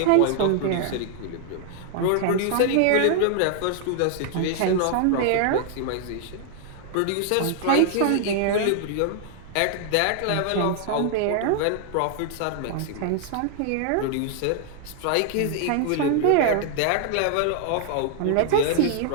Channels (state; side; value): different; both; correlation 0.00